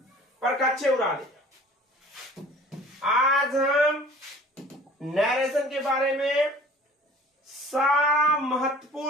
परकच्चे उड़ा दें। आज हम नरेशन के बारे में सारा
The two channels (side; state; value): both; normal; correlation 0.48